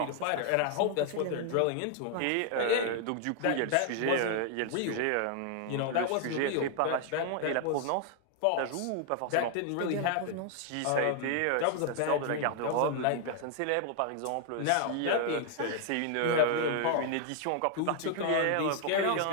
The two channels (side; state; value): both; different; correlation 0.00